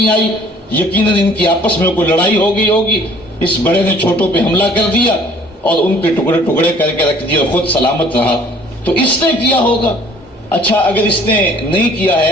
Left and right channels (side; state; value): both; normal; correlation 0.54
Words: آئی. یقیناً ان کی آپس میں کوئی لڑائی ہو گئی ہوگی، اس بڑے نے چھوٹوں پہ حملہ کر دیا اور ان کے ٹکڑے ٹکڑے کر کے رکھ دیا اور خود سلامت رہا، تو اس نے کیا ہوگا. اچھا اگر اس نے نہیں کیا